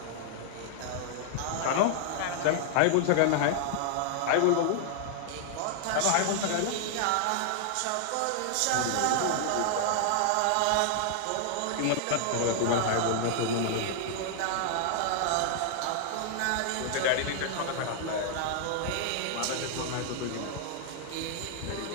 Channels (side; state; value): both; different; correlation 0.00